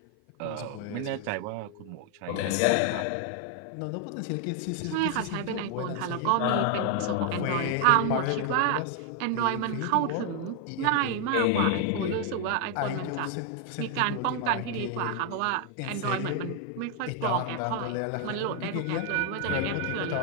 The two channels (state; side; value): different; both; correlation 0.00